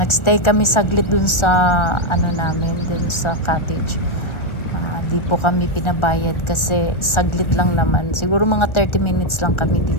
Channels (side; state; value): right; late; 1.4 ms